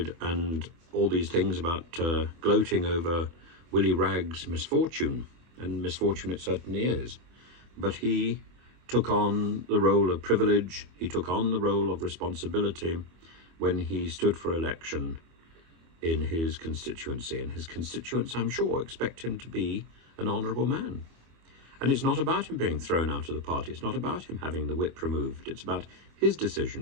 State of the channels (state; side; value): late; left; 24 ms